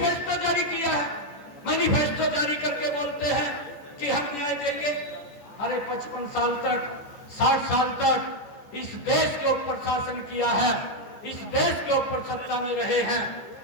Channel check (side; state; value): right; late; 14 ms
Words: जारी किया है। मैनिफेस्टो जारी करके बोलते हैं कि हम न्याय देंगे। अरे 55 साल तक 60 साल तक इस देश के ऊपर शासन किया है, इस देश के ऊपर सत्ता में रहे हैं,